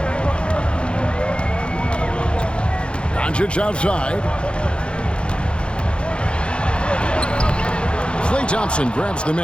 Doncic outside. Klay Thompson grabs the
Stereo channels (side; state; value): right; late; 0.056 ms